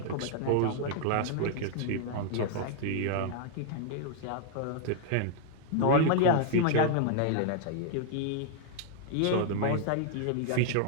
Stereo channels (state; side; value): different; both; correlation 0.00